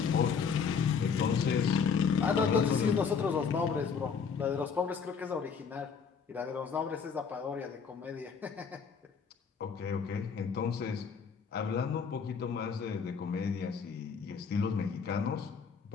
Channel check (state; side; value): quieter; right; 6.1 dB